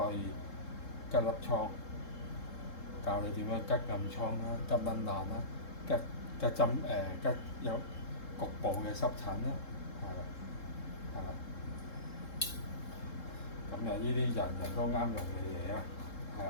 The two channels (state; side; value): late; right; 3.7 ms